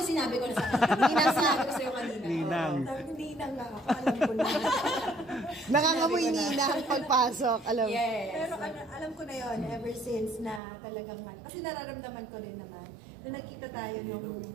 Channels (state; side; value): drops out; left; at 10.6 s